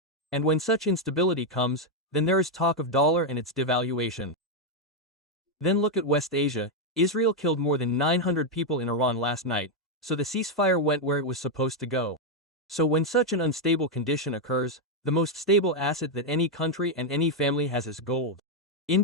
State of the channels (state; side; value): normal; both; correlation 0.02